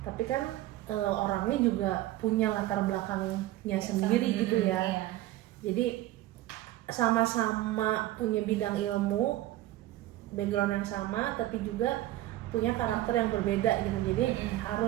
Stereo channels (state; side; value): quieter; left; 15.5 dB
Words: Tapi kan orangnya juga punya latar belakangnya sendiri gitu ya. Jadi sama-sama punya bidang ilmu, background yang sama, tapi juga punya karakter yang berbeda gitu. Jadi